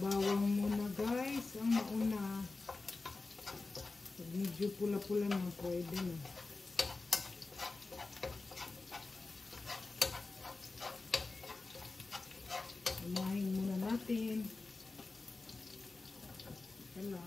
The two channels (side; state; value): right; quieter; 3.6 dB